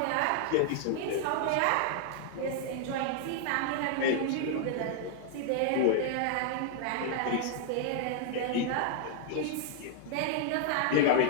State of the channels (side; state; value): both; different; correlation 0.00